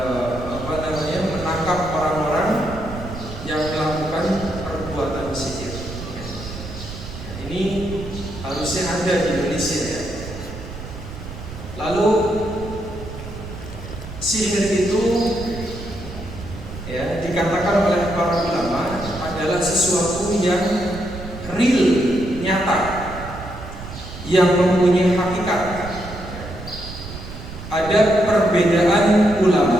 menangkap orang-orang yang melakukan perbuatan sihir. Ya. Ini harus masih ada di Indonesia ya. Lalu sihir itu ya dikatakan oleh para ulama adalah sesuatu yang real, nyata, yang mempunyai hakikat. Ada perbedaan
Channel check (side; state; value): right; noise; rumble, 11 dB below the sound